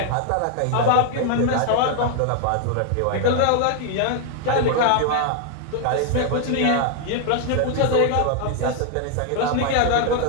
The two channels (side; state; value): both; different; correlation 0.00